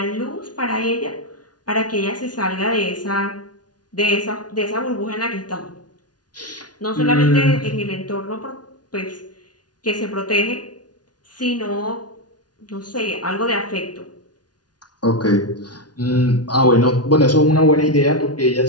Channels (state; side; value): late; right; 0.69 ms